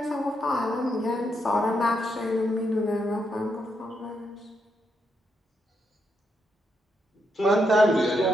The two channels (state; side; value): normal; both; correlation 0.80